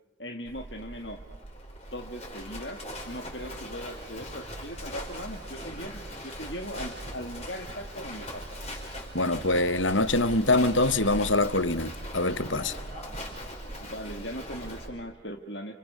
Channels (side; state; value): both; normal; correlation -0.06